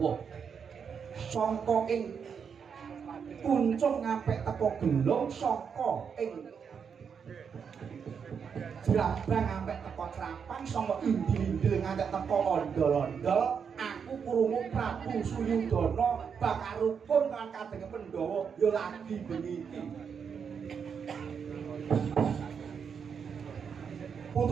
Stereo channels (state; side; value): quieter; left; 6.7 dB